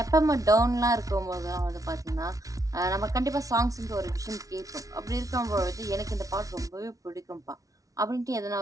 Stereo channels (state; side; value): late; left; 0.17 ms